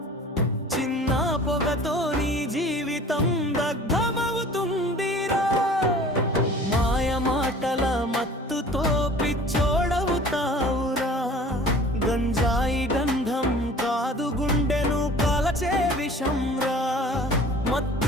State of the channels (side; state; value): both; normal; correlation 0.46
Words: చిన్న పొగతో నీ జీవితం దగ్ధమవుతుందిరా. మాయ మాటల మత్తుతో పిచ్చోడవుతావురా. గంజాయి గంధం కాదు గుండెను కాలచే విషంరా.